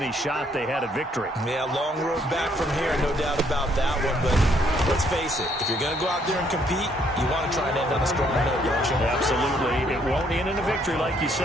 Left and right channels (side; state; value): both; normal; correlation 0.68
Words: shot they had at victory. Yeah, long road back from here, no doubt about that one. But let's face it, if you're going to go out there and compete, you want to try and end on a strong note, don't you? Absolutely. It won't end in a victory like you